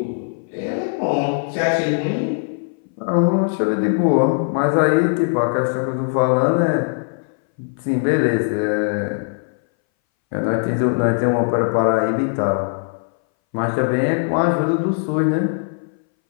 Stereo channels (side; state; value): right; silent; 62 dB below the other